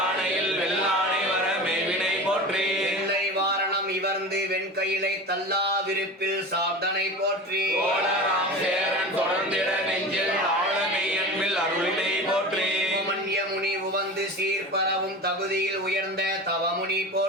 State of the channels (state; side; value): normal; both; correlation 0.31